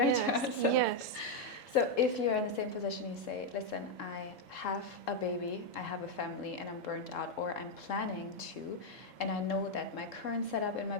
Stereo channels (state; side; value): normal; both; correlation 0.02